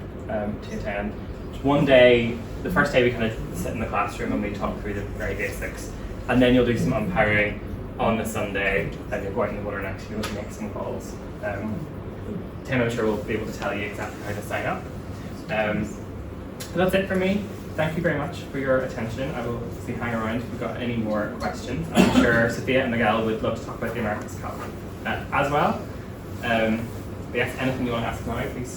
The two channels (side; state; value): both; identical; correlation 1.00